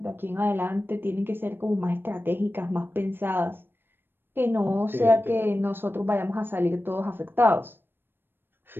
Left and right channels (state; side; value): late; left; 0.098 ms